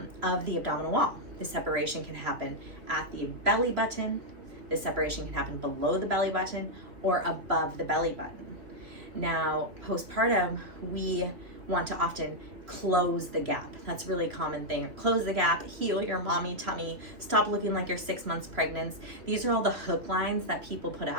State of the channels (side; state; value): left; late; 2.9 ms